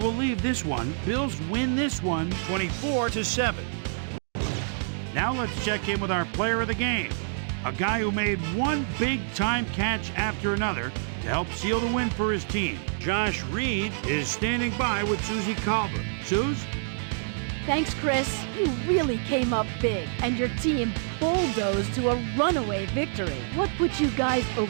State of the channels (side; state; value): left; silent; digital silence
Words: leave this one. Bills win this one 24-7. Now let's check in with our player of the game. A guy who made one big-time catch after another to help seal the win for his team. Josh Reed is standing by with Susie Colbert. Suze? Thanks, Chris. You really came up big, and your team bulldozed to a runaway victory. What put you guys